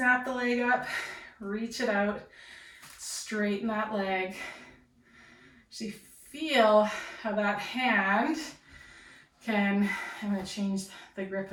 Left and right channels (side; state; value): both; identical; correlation 1.00